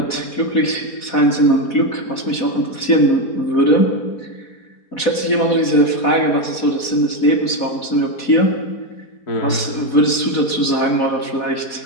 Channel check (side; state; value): right; late; 4.1 ms